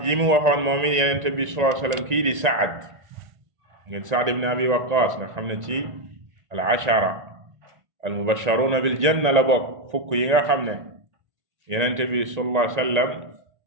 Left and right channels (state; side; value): late; left; 1.9 ms